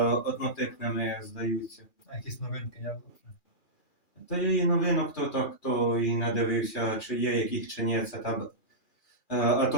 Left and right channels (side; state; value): right; late; 2.4 ms